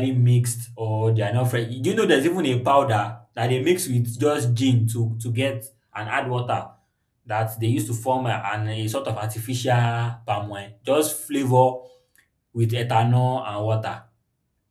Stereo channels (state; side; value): identical; both; correlation 1.00